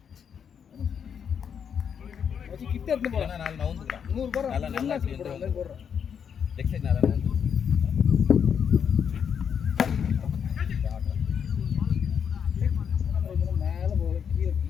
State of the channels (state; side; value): quieter; right; 7.5 dB